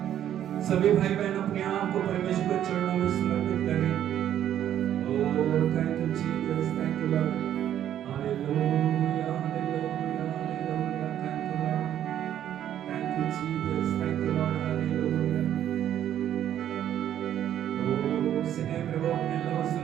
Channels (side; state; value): left; quieter; 10.8 dB